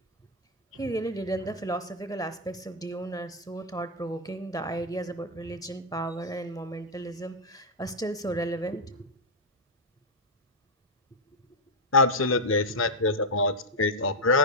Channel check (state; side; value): normal; both; correlation -0.03